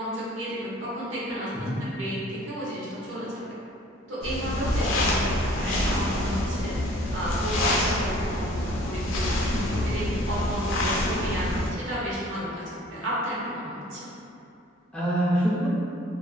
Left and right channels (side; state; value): both; normal; correlation 0.53